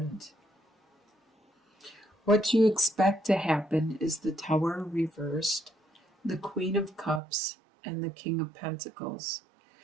What you expect to happen is the Tower reversed, the Queen of Cups, and the King of Pentacles.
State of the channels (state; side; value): drops out; left; at 7.2 s